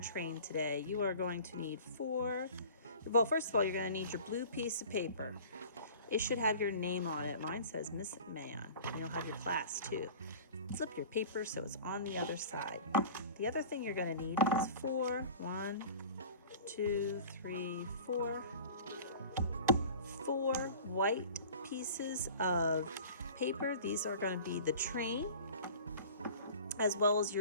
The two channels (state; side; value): inverted; both; correlation -0.42